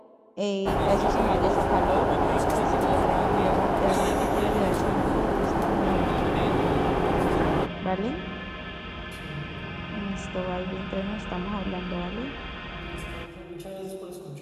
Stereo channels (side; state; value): both; identical; correlation 1.00